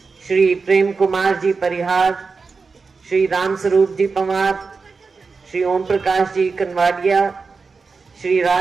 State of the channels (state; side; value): quieter; left; 4.6 dB